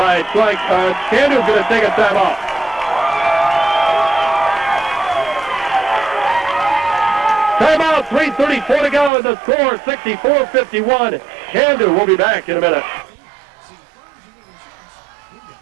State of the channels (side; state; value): left; drops out; at 9.1 s